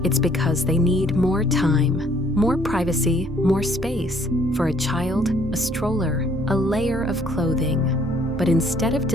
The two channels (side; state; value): both; normal; correlation 0.62